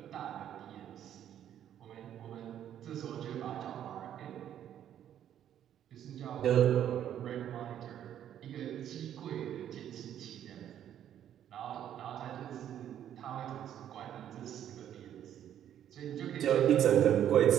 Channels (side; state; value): left; quieter; 10.4 dB